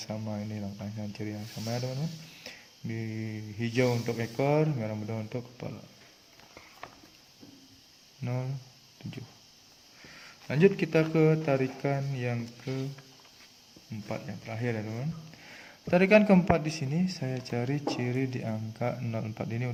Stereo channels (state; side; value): identical; both; correlation 1.00